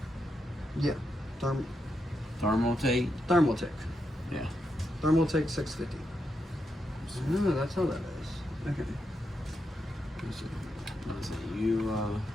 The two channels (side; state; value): both; normal; correlation 0.84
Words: yeah, Thermaltate? Thermaltake. Yeah. Thermaltake 650. Oh, that's how that is. Okay. Let's see, you,